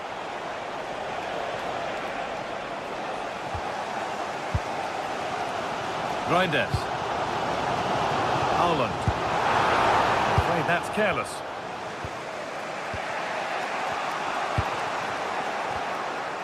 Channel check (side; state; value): both; identical; correlation 1.00